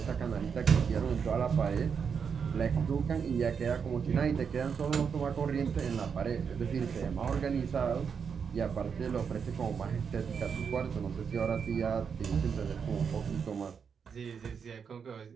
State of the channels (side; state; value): left; quieter; 6.5 dB